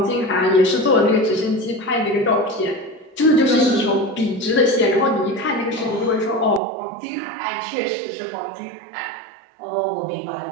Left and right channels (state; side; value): drops out; left; at 6.6 s